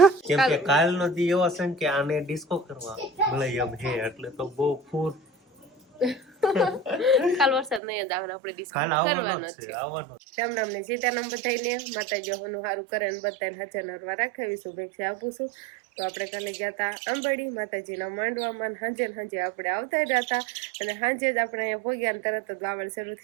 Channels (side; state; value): left; drops out; at 7.8 s